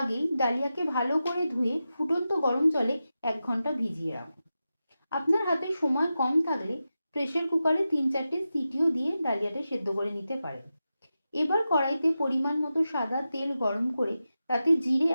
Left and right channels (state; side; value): inverted; both; correlation -0.91